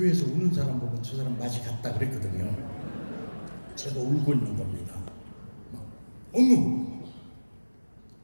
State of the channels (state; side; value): inverted; both; correlation -1.00